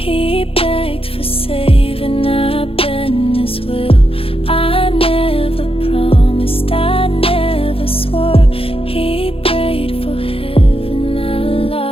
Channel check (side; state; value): right; late; 0.27 ms